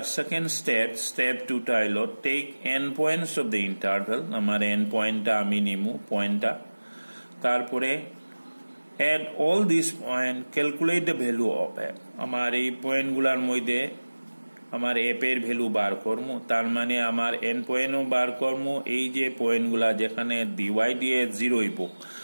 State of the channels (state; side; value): inverted; both; correlation -1.00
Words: সেকেন্ড স্টেপ 2টা হলো take end points of the interval, আমার এন পয়েন্টটা আমি নিমু পয়েন্টটা, তারপরে at all this point calculate the value of F, আমার এই পয়েন্টগুলোর মধ্যে আমার এফ এর ভ্যালু বার করবো, তার মানে আমার এন পয়েন্টও বার করবো। এই যে পয়েন্টগুলা যেখানে ডিওয়াই দিয়ে 0 হইব